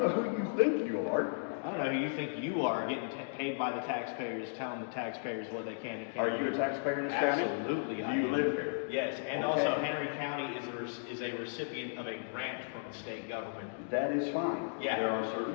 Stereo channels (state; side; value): silent; right; digital silence